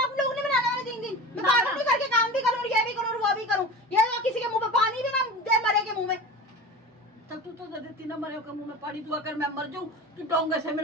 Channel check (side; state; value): both; normal; correlation 0.33